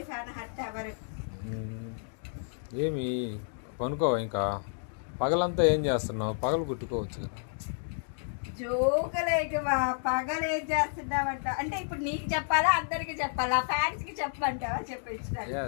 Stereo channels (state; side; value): silent; right; digital silence